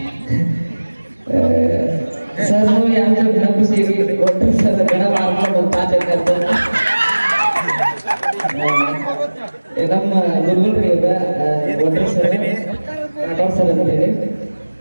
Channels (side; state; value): both; inverted; correlation -1.00